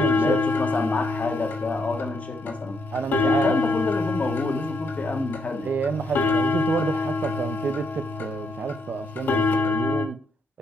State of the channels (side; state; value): both; normal; correlation 0.75